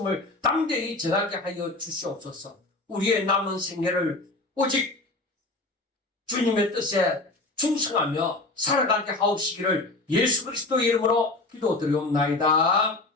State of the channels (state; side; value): quieter; right; 3.0 dB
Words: 담대히 전하게 하여 주시옵소서. 우리의 남은 생애를 오직 주님의 뜻에 충성하며 살아가게 하옵시기를 예수 그리스도의 이름으로 기도드리옵나이다.